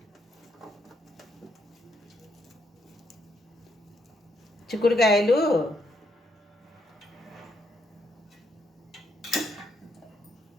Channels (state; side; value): normal; both; correlation 0.76